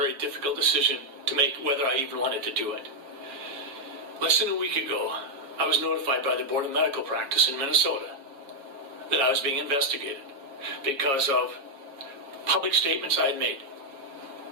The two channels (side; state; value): left; late; 7.3 ms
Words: difficult decision to make whether I even wanted to do it. Less than a week ago, I was notified by the Board of Medical Practice in Minnesota that I was being investigated because of public statements I had made.